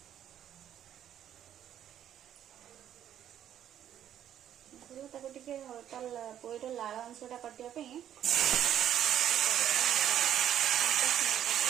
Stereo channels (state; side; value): quieter; left; 10.4 dB